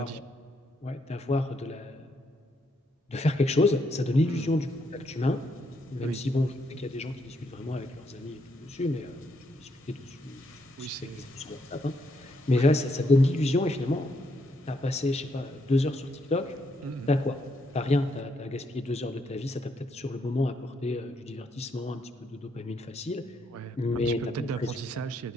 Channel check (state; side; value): normal; both; correlation 0.76